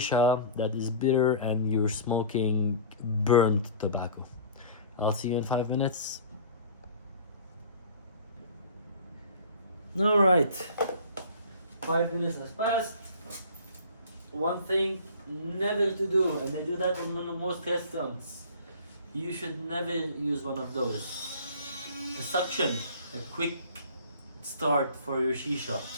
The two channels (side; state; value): both; inverted; correlation -0.43